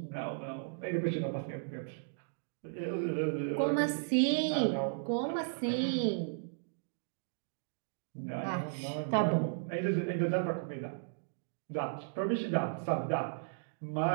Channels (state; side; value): silent; left; digital silence